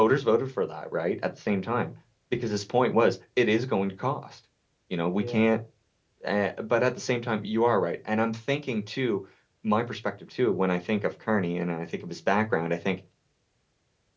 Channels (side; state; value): both; identical; correlation 1.00